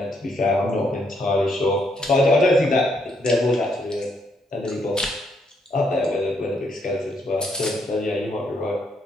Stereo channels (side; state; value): both; normal; correlation 0.74